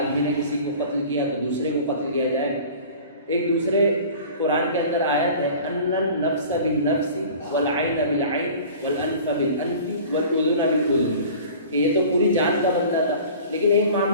نے کسی کو قتل کیا تو دوسرے کو قتل کیا جائے. ایک دوسرے قرآن کے اندر آیت ہے ان النفس بالنفس والعین بالعین والانف بالانف والاذن بالاذن، کہ یہ تو پوری جان کا بندہ تھا. لیکن ایک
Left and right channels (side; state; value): both; inverted; correlation -0.42